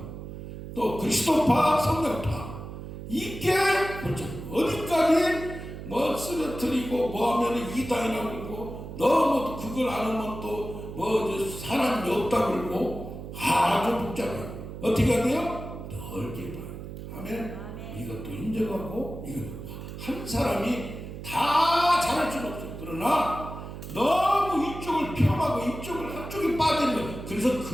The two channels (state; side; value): noise; right; hum, 10 dB below the sound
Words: 또 그리스도파, 성령파. 이게 그렇죠. 어디까지 뭐 쓰러뜨리고 뭐 하면 이단이라고 그러고 너무 그걸 안 하면 또 뭐 사람이 없다고 그러고 아주 복잡해요. 어떻게 해야 돼요? 넓게 봐요. 아멘. 이것도 인정하고 이거 한 사람이 다 잘할 수는 없어요. 그러나 너무 이쪽을 폄하고 이쪽을 한쪽에 빠지는 거예요. 그래서